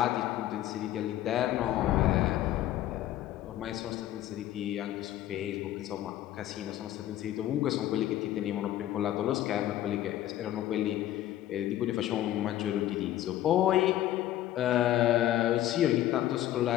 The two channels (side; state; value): right; quieter; 13.3 dB